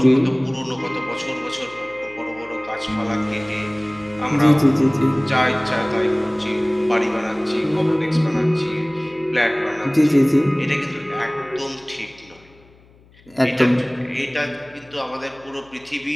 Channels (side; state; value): left; noise; hum, 28 dB below the sound